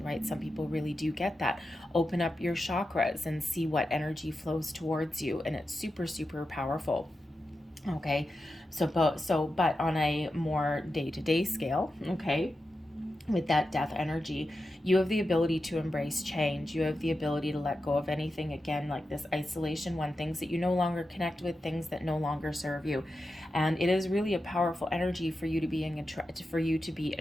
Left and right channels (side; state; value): both; normal; correlation 0.90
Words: right? Some people really do get that. Open up your chakras and see what energy flows towards you, and it's super, super powerful. Okay, but on a more day-to-day scale, okay, with that Death energy, you have the ability to embrace change. You have the ability to let go of anything, again, like this isolation one, things that you no longer connect with, things that no longer serve you. And it is really a powerful energy for you to be